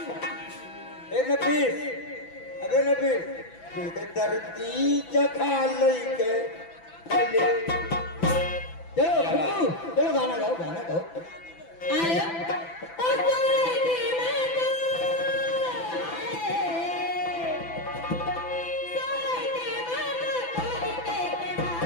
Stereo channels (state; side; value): late; right; 6.0 ms